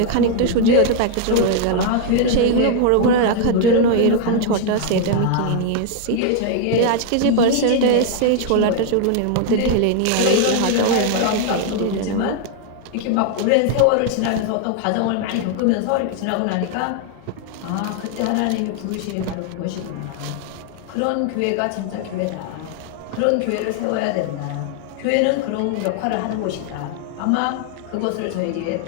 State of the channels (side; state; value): both; different; correlation 0.00